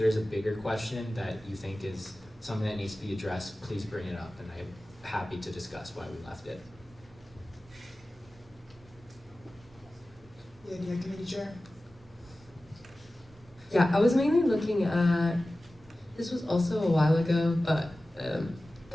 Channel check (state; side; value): normal; both; correlation 0.96